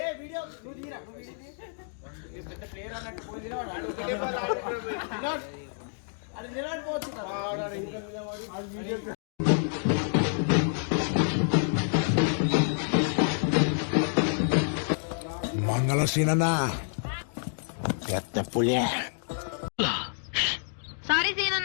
మంగళ సీనన్నా పెద్ద పులే సారీ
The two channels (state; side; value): silent; right; digital silence